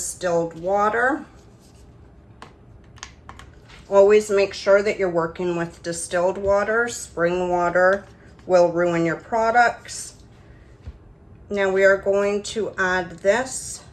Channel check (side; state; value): both; identical; correlation 1.00